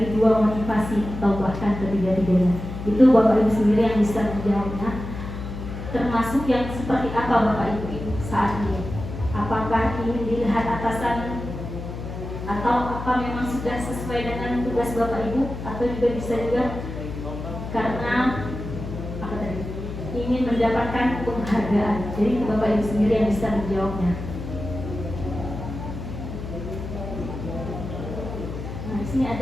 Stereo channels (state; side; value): noise; left; hum, 8 dB below the sound